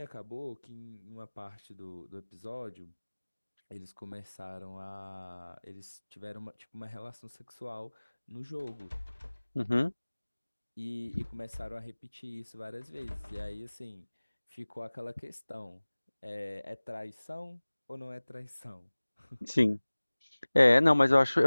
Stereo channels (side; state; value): both; inverted; correlation -1.00